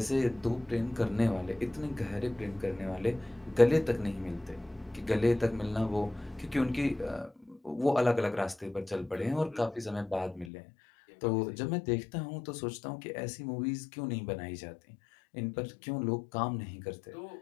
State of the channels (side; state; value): right; drops out; at 10.5 s